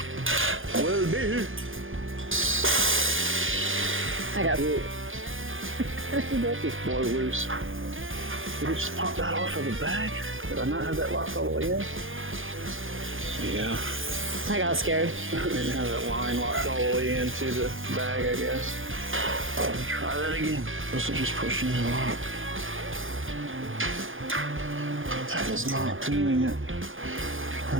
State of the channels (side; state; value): left; late; 0.58 ms